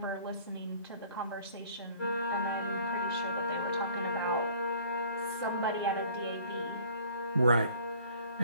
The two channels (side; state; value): both; inverted; correlation -0.52